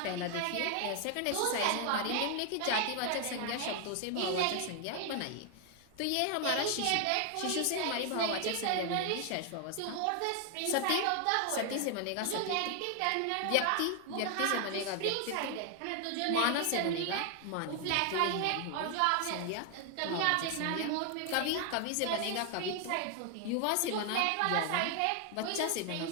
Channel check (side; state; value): both; different; correlation 0.00